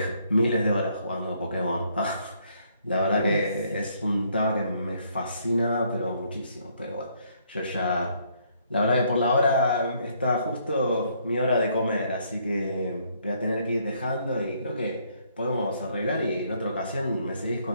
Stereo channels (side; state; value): both; inverted; correlation -0.69